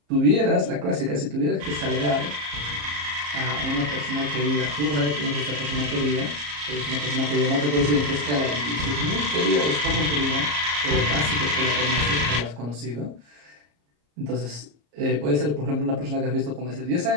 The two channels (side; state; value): left; late; 34 ms